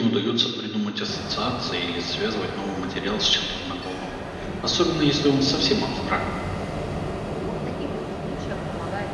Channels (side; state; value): both; identical; correlation 1.00